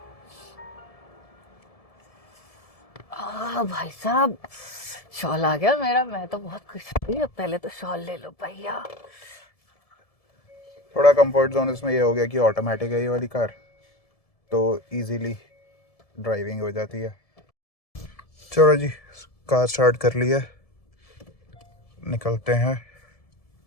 भाई साहब शॉल आ गया मेरा, मैं तो बहुत खुश हुई। अब पहले तो शॉल ले लो भैया। थोड़ा कंफर्ट जोन इसमें ये हो गया कि ऑटोमेटिक है ये वाली कार, तो इजीली ड्राइविंग हो जाती है। चलो जी कार स्टार्ट कर लिया, निकलते हैं।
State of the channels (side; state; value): right; late; 1.7 ms